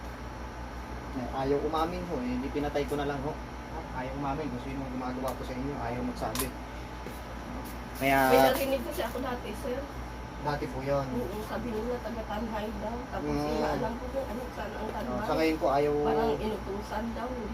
Ayaw umamin ho. Hindi pinatay ko na lang ho. Ayaw umamin. Kung sino gumagawa ko sa inyo, ayaw magsabi. Kaya... May narinig kasi ako dati, sir. Dati po yun. Oo, sabi nila taga-tanhay daw. Tapos hindi alam ko kung ano saan ang tanhay. Sa ngayon po ayaw... Parang inutusan daw.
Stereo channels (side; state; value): both; identical; correlation 1.00